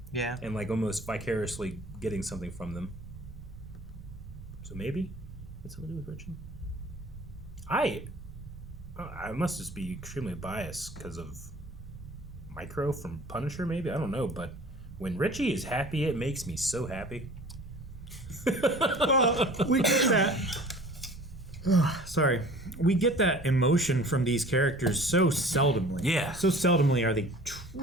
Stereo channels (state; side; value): normal; both; correlation 0.46